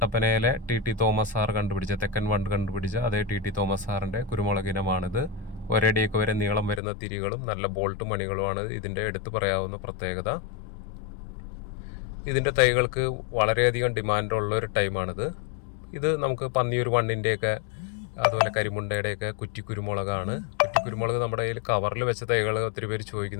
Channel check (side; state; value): right; drops out; at 6.8 s